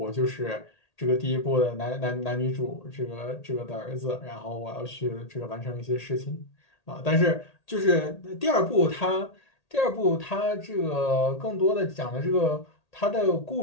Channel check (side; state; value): right; late; 1.8 ms